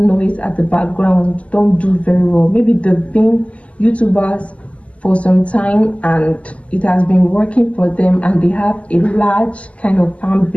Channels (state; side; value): late; right; 0.065 ms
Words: at the background don't do very well. Maybe they've been YouTubers for some time and it has been working for them and they have a large kind of fan